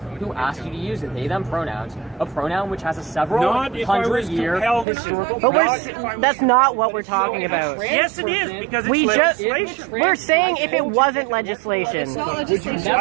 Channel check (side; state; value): left; drops out; at 4.9 s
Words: who asked you to use they them pronouns, a pronoun which has a several hundred-year historical... But that's not what we're talking about. Yes, it is, because it's legislation. We're saying if it wasn't legislation. It's not legislation.